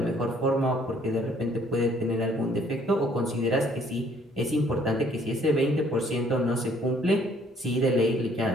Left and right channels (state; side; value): normal; both; correlation 0.62